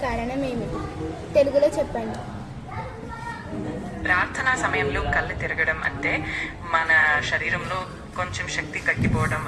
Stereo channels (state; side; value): identical; both; correlation 1.00